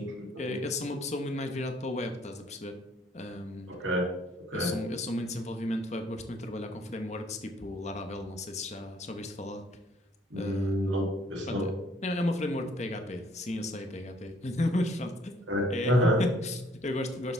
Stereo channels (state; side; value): normal; both; correlation 0.62